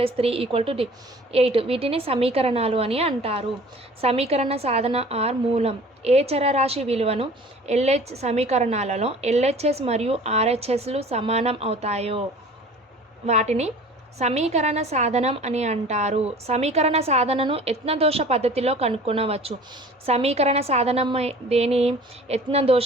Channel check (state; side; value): normal; both; correlation 0.45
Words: 3 = 8. వీటిని సమీకరణాలు అని అంటారు. సమీకరణ సాధన ఆర్ మూలం. ఏ చరరాశి విలువను LH సమీకరణాలలో LHS మరియు RHSలు సమానం అవుతాయో వాటిని సమీకరణ సాధనం అని అంటారు. సమీకరణ సాధనను యత్నదోష పద్ధతిలో కనుక్కొనవచ్చు. సమీకరణ సాధనం దేని?